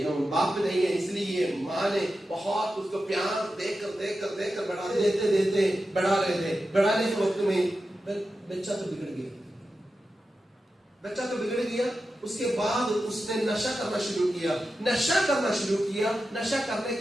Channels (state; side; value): normal; both; correlation 0.91